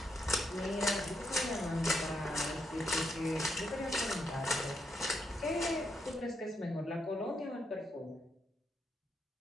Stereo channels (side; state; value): both; normal; correlation 0.79